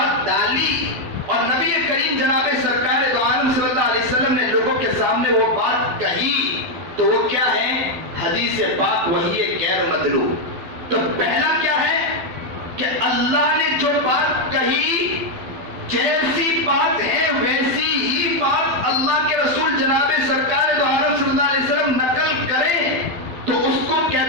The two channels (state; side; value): late; left; 12 ms